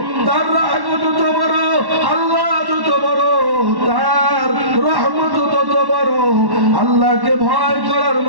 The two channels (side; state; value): left; late; 1.1 ms